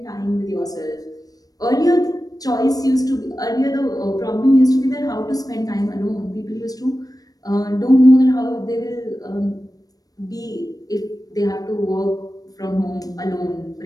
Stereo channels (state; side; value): late; right; 0.18 ms